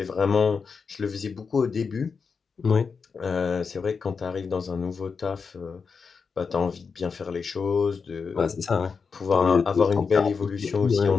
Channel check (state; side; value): quieter; right; 5.4 dB